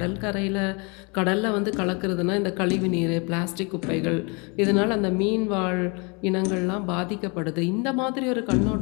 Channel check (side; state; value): right; quieter; 31.2 dB